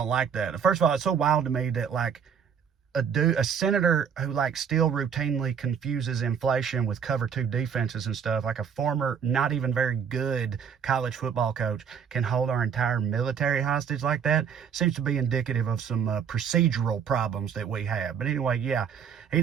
like that. First of all, it's so wild to me that, like, a senator who, like, still routinely confuses inflation with cover two defenses and stuff, like a former not even very good college football coach, can hold our entire military hostage like that. Seems to be indicative of some procedural problems that we have. But anyway, yeah, he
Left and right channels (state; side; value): quieter; left; 7.4 dB